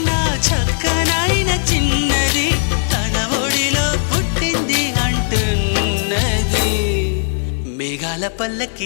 చక్కనైన చిన్నది తన ఒడిలో పుట్టింది అంటున్నది. మేఘాల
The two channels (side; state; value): right; silent; digital silence